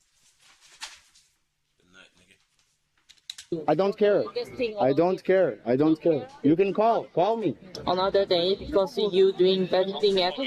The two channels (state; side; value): identical; both; correlation 1.00